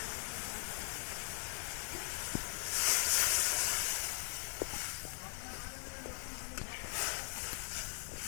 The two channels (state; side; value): silent; right; digital silence